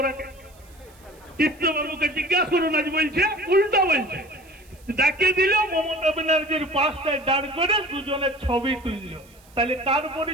চিত্তবাবুকে জিজ্ঞাসা করুন, আজ বলছে উল্টা বলছে। ডাকিয়ে দিল, মমতা ব্যানার্জির পাশটায় দাঁড় করে দুজনের ছবি তুলল। তাহলে তার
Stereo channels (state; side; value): noise; right; hiss, 28 dB below the sound